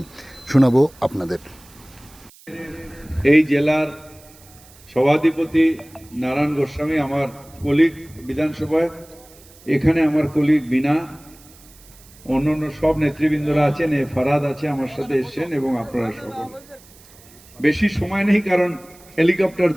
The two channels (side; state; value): right; noise; hiss, 25 dB below the sound